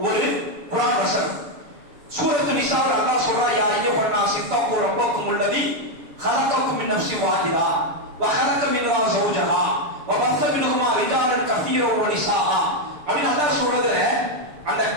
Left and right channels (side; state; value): left; late; 7.0 ms